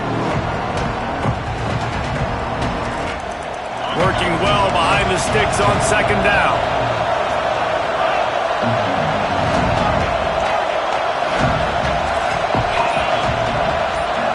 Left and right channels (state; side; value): identical; both; correlation 1.00